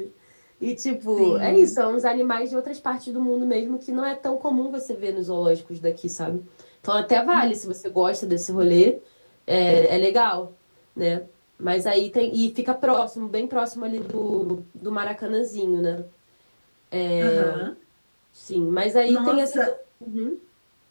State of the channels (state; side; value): inverted; both; correlation -1.00